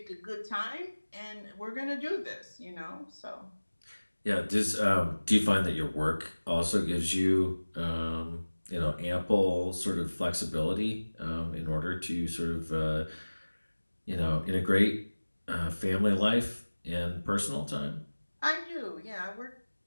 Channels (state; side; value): inverted; both; correlation -1.00